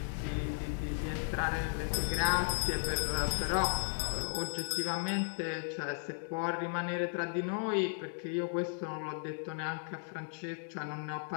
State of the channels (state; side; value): silent; right; digital silence